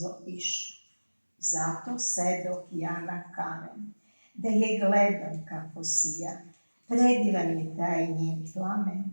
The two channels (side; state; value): both; inverted; correlation -1.00